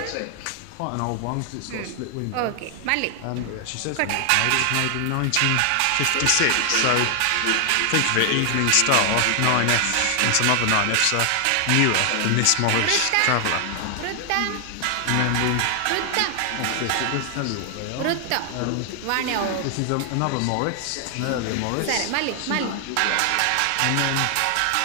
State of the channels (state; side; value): different; both; correlation 0.00